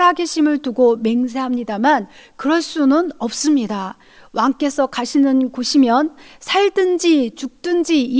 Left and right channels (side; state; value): both; identical; correlation 1.00